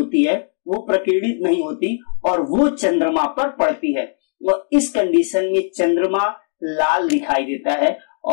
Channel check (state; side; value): silent; right; digital silence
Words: है वो प्रकीर्णित नहीं होती और वो चंद्रमा पर पड़ती है। और इस कंडीशन में चंद्रमा लाल दिखाई देता है